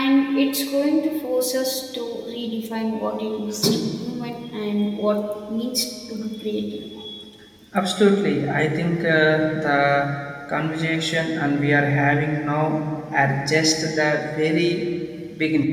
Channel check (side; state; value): both; identical; correlation 1.00